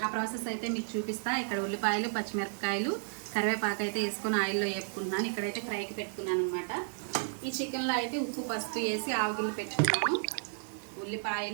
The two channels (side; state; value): left; silent; digital silence